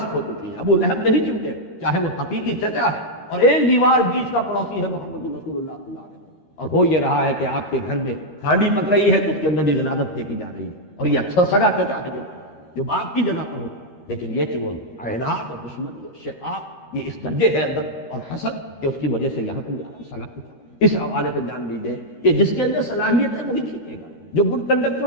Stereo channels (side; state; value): right; late; 13 ms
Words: ہو چکی ہیں، ابو لہب نہیں چمٹے چاہے وہ حقیقی چچا ہے اور ایک دیوار بیچ کا پڑوسی ہے محمد رسول اللہ صلی اللہ علیہ وسلم، اور ہو یہ رہا ہے کہ آپ کے گھر میں ہانڈی پک رہی ہے تو اس کے اندر یہ غلاظت پھینکی جا رہی ہے، اور یہ اچھا سگا چچا ہے جو باپ کی جگہ پر ہو، لیکن یہ کہ وہ اعنات اور دشمنی اور شقاق یہ اس درجے ہے اندر اور حسد کہ اس کی وجہ سے یہاں پر سگا۔ اس حوالے سے جان لیجیے کہ جس کے اندر صلاحیت ہے وہی کھینچے گا، جو گڈ کنڈکٹر